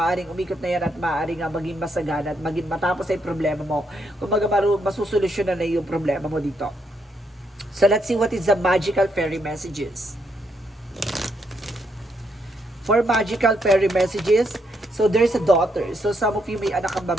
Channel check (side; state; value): both; normal; correlation 0.76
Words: umikot na yan at maaaring maging masagana at maging matapos ay problema mo. Kung masusolusyonan na yung problema mo dito. So, let's see what is the magical fairy messages. For magical fairy messages, so there's a daughter. So, some of you may anak ang